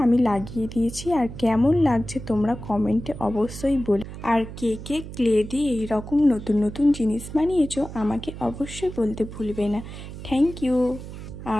আমি লাগিয়ে দিয়েছি। আর কেমন লাগছে তোমরা কমেন্টে অবশ্যই বলো। আর কে কে ক্লে দিয়ে এইরকম নতুন নতুন জিনিস বানিয়েছো আমাকে অবশ্যই বলতে ভুলবে না। Thank you.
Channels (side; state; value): right; noise; hum, 11 dB below the sound